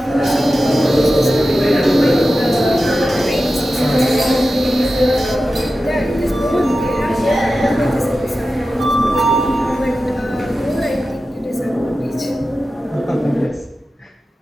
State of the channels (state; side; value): normal; both; correlation 0.93